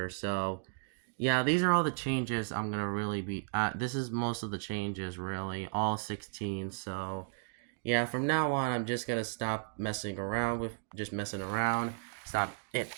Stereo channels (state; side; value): silent; left; digital silence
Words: So yeah, these are all the changes I'm gonna really be. This is most of the changes really, all 16. So yeah, from now on, I'm just gonna stop messing around with just messing around.